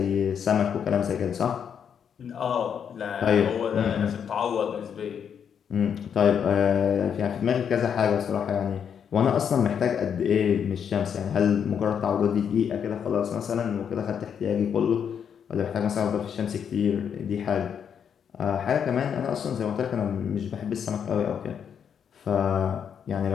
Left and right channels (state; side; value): quieter; right; 7.8 dB